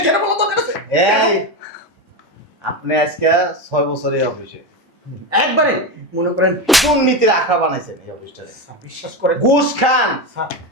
যেটা বলো তোর কাছে। এই আপনি আজকে 6 বছর এই অফিসে একবারে মনে করেন দুর্নীতির আখড়া বানাইছেন এই অফিসটারে। স্যার, বিশ্বাস করেন ঘুষ খান। স্যার,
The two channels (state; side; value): normal; both; correlation 0.15